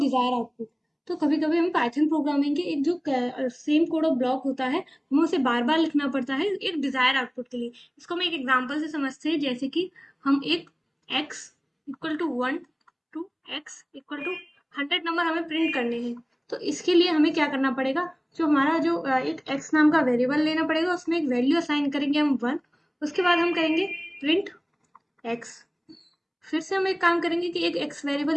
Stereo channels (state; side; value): identical; both; correlation 1.00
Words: desire output. तो कभी कभी हमें पाइथन प्रोग्रामिंग के एक जो same code of block होता है, हमें उसे बार बार लिखना पड़ता है एक डिजायर आउटपुट के लिए। इसको हम एक एग्जाम्पल से समझते हैं, जैसे कि हम एक x equal to 1 to x equal to 100 number हमें प्रिंट करने हैं। तो इसके लिए हमें क्या करना पड़ेगा, जो हमारा जो एक x नाम का वेरिएबल लेना पड़ेगा, उसमें एक वैल्यू असाइन करेंगे हम 1। उसके बाद हम करेंगे प्रिंट x। फिर से हम एक काम करेंगे कि एक x